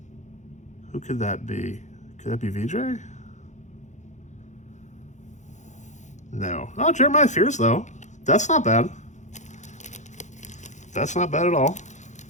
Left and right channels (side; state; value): right; late; 0.35 ms